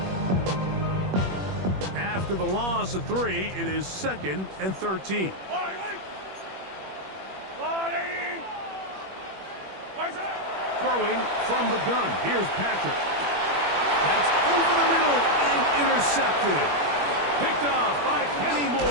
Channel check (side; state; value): left; late; 21 ms